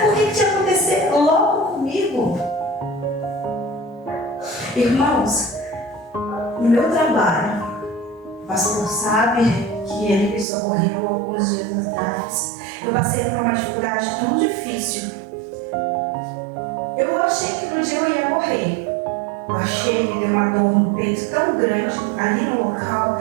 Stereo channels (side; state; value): left; drops out; at 10.5 s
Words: Por que tinha que acontecer logo comigo? Irmãos, no meu trabalho, o pastor sabe que ele me socorreu alguns dias atrás. Eu passei por uma dificuldade tão difícil. Eu achei que no dia eu ia morrer. Eu achei, me deu uma dor no peito tão grande ali no